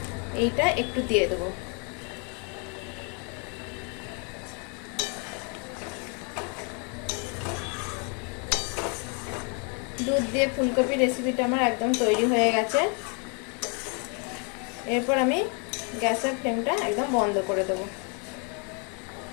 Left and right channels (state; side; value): quieter; right; 36.2 dB